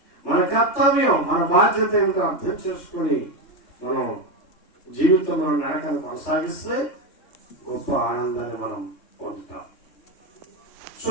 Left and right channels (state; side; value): late; right; 3.2 ms